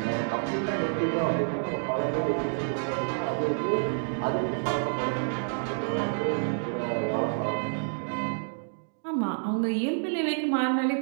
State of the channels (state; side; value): silent; left; digital silence